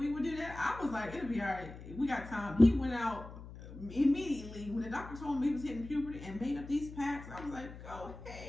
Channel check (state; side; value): noise; left; hum, 14 dB below the sound